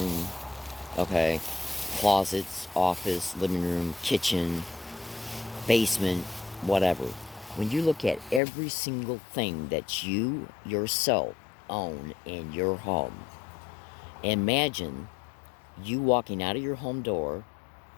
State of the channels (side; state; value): right; drops out; at 8.4 s